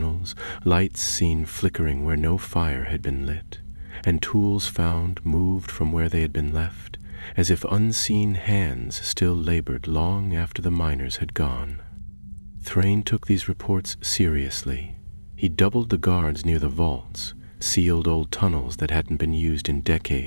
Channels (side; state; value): both; inverted; correlation -1.00